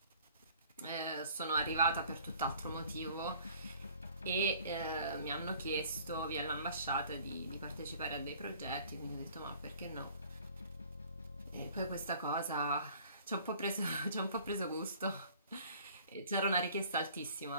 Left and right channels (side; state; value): both; inverted; correlation -0.53